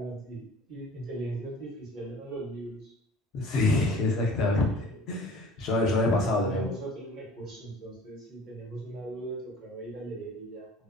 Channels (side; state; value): both; normal; correlation 0.47